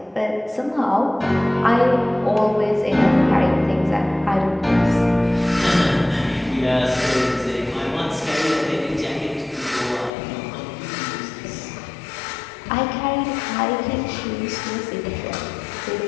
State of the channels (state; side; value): drops out; right; at 10.1 s